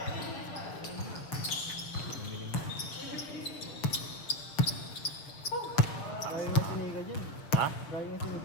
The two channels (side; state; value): right; late; 6.6 ms